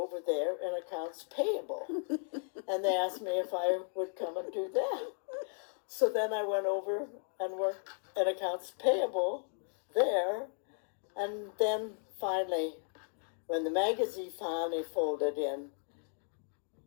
there in accounts payable. And they asked me if I would come and do that. So then I went over and worked in accounts payable there. And then finally, when the magazine finally folded in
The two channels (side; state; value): right; silent; 54 dB below the other